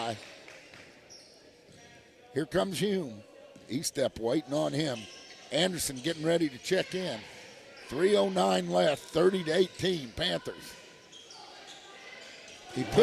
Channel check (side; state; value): both; identical; correlation 1.00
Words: Here comes Hume. E-Step waiting on him. Anderson getting ready to check in. 3:09 left, 30-18 Panthers. He